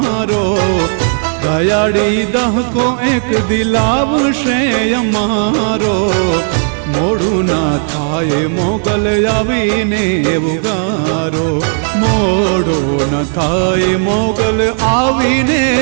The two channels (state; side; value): silent; left; 63 dB below the other